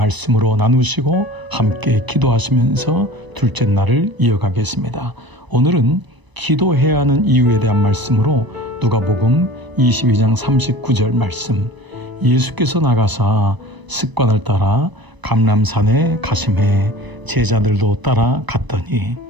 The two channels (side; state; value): left; late; 1.0 ms